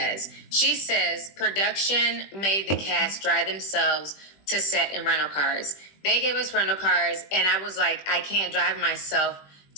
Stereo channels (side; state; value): right; late; 20 ms